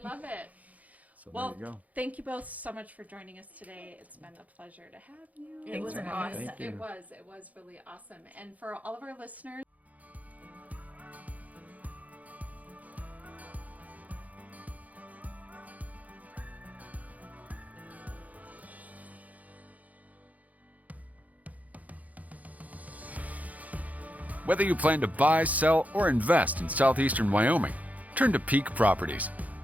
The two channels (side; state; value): left; late; 0.075 ms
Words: love it. So Well, there you go. thank you both so much for joining us today. It's been a pleasure to have you. It was for having us. awesome. Thank you. It was really awesome. And for all of our listeners, Whether you plan to buy, sell, or invest in southeastern Wyoming, turn to Peak Properties.